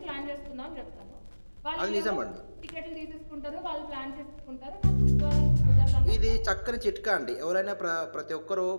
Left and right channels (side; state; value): both; inverted; correlation -1.00